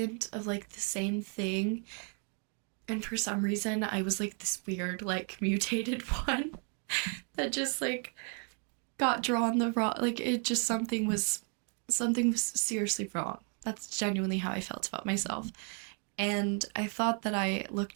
of like the same thing. And for some reason I was like this weird like mutated one that just like got drawn the wrong, like it just something was seriously wrong. That's genuinely how I felt about myself. And I thought that I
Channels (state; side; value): quieter; left; 39.9 dB